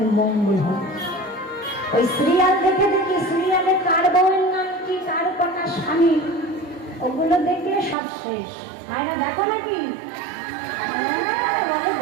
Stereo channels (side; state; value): left; drops out; at 8.0 s